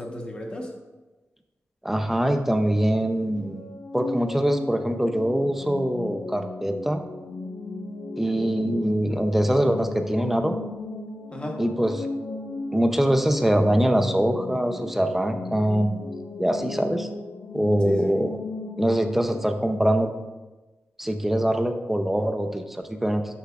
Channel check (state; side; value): normal; both; correlation 0.96